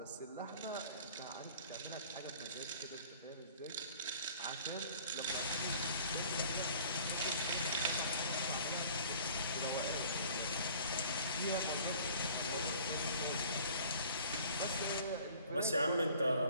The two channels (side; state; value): both; inverted; correlation -0.50